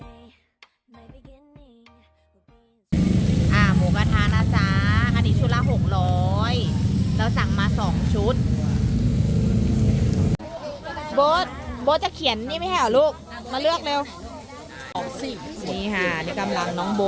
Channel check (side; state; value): both; identical; correlation 1.00